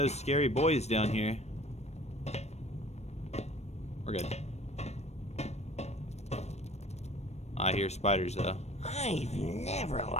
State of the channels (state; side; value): late; right; 0.31 ms